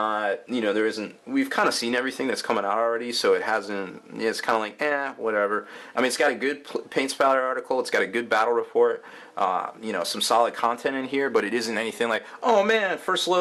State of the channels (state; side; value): identical; both; correlation 1.00